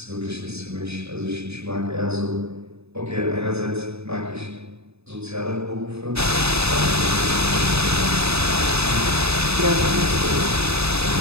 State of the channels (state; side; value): late; left; 0.79 ms